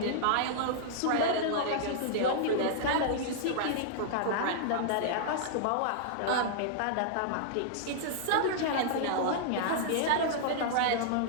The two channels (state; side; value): different; both; correlation -0.01